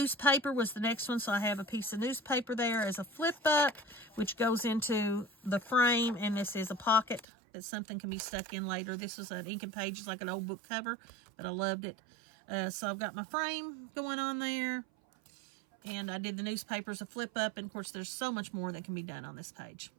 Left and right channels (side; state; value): left; drops out; at 7.2 s